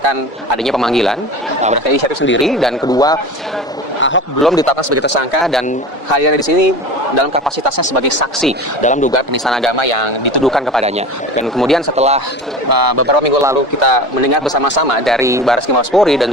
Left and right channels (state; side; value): normal; both; correlation 0.33